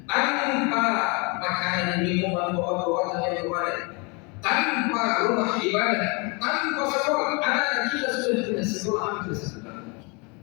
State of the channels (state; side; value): quieter; right; 30.7 dB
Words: tanpa makanan, minuman, obat-obatan yang kemarin, tanpa rumah ibadah, tanpa sekolah? Anak-anak kita sudah tidak sekolah hampir setahun,